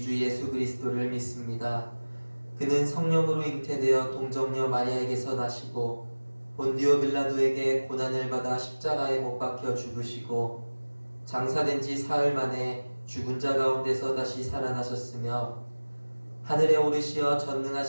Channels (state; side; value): inverted; both; correlation -1.00